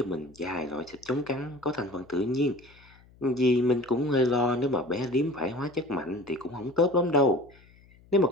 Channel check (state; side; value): noise; left; hum, 27 dB below the sound